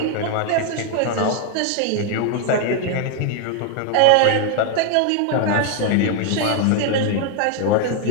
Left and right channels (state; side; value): different; both; correlation 0.01